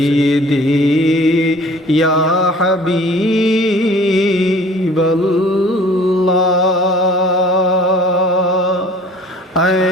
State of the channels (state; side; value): normal; both; correlation 0.50